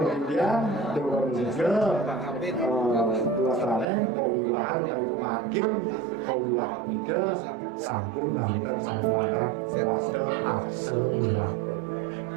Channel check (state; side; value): drops out; left; at 3.9 s